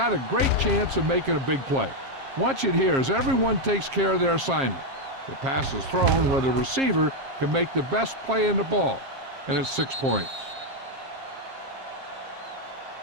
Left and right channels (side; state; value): left; late; 7.4 ms